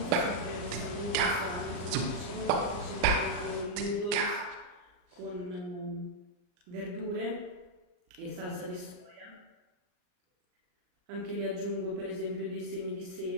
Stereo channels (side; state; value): left; late; 39 ms